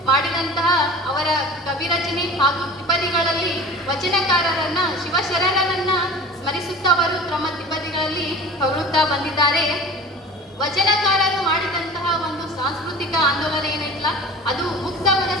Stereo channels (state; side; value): normal; both; correlation 0.39